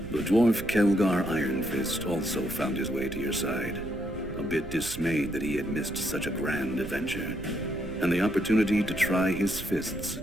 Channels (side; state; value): right; noise; rumble, 12 dB below the sound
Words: The dwarf Kelgar Iron Fist also found his way to your side, a bit dismayed that he had missed such a grand adventure, and the opportunity to try his fists